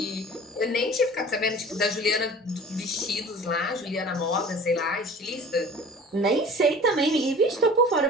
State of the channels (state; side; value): normal; both; correlation 0.43